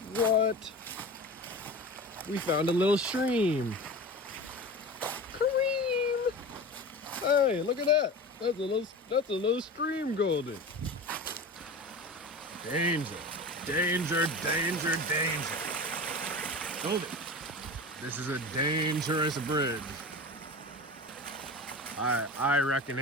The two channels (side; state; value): both; normal; correlation 0.31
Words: What? We found a little stream. Kareem! Hey, look at that. That's a little stream, Goldie. Danger, danger, danger, danger. Goldie, this is a dangerous bridge. I reckon